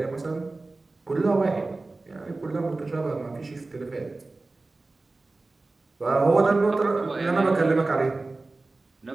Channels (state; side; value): quieter; left; 3.3 dB